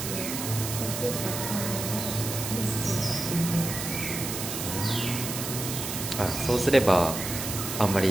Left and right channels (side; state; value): right; noise; hiss, 5 dB below the sound